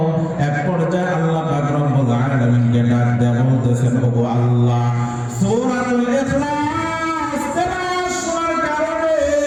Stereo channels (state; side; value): noise; right; hum, 26 dB below the sound